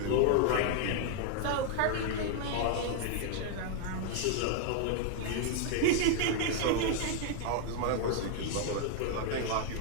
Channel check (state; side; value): different; both; correlation 0.00